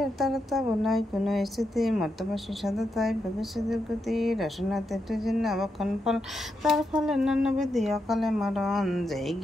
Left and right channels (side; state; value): both; normal; correlation 0.84